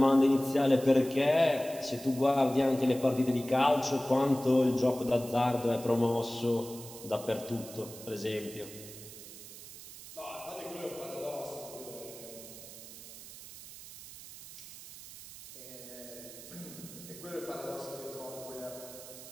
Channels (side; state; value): right; noise; hiss, 15 dB below the sound